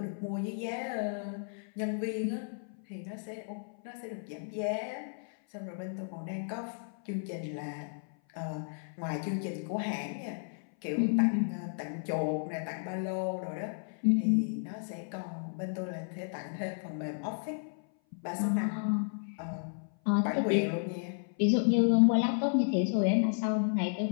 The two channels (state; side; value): silent; right; 56 dB below the other